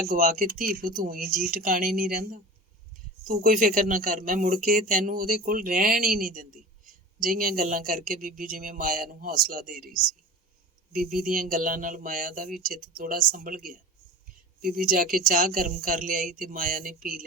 ਗਵਾ ਕੇ ਧੀ ਪੁੱਤ ਊਂ ਜੀ ਟਿਕਾਣੇ ਨਹੀਂ ਰਹਿੰਦਾ। ਤੂੰ ਕੋਈ ਫਿਕਰ ਨਾ ਕਰ, ਮੈਂ ਮੁੜ ਕੇ ਤੈਨੂੰ ਉਹਦੇ ਕੋਲ ਰਹਿਣ ਹੀ ਨਹੀਂ ਦਿੰਦੀ। ਜਿਹੀਆਂ ਗੱਲਾਂ ਕਰਕੇ ਬੀਬੀ ਜਿਵੇਂ ਮਾਇਆ ਨੂੰ ਹੌਸਲਾ ਦੇ ਰਹੀ ਸੀ। ਬੀਬੀ ਦੀਆਂ ਗੱਲਾਂ ਨਾਲ ਮਾਇਆ ਦਾ ਵੀ ਚਿੱਤ ਥੋੜ੍ਹਾ ਸੰਭਲ ਗਿਆ। ਬੀਬੀ ਜਾ ਕੇ ਚਾਹ ਗਰਮ ਕਰ ਲਿਆਈ ਤੇ ਮਾਇਆ ਨੇ ਪੀ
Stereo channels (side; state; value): both; normal; correlation 0.35